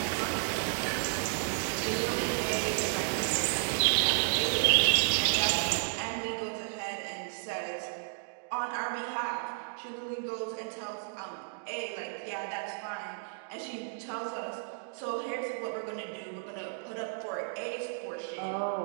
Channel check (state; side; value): silent; left; digital silence